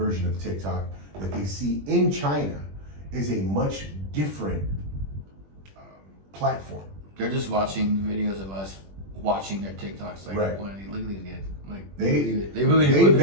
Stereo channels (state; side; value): late; left; 21 ms